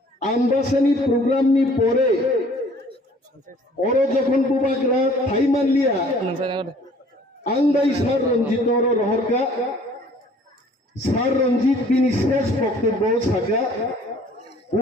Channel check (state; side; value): normal; both; correlation 0.54